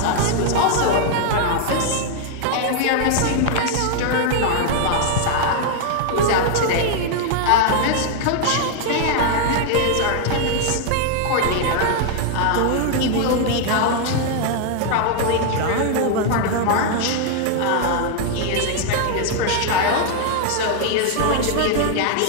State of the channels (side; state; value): both; different; correlation 0.00